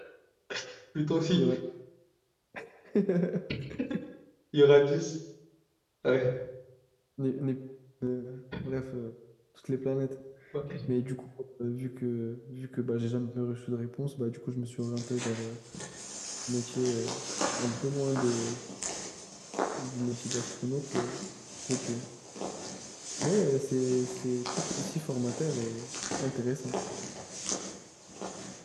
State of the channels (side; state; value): both; identical; correlation 1.00